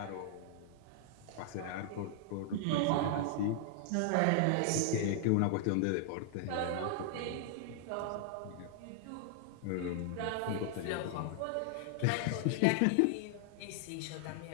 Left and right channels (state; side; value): different; both; correlation 0.00